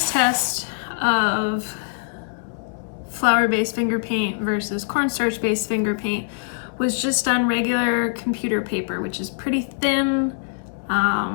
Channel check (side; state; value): right; silent; digital silence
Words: test of flower-based finger paint versus cornstarch-based finger paint was just on regular computer paper, which is pretty thin,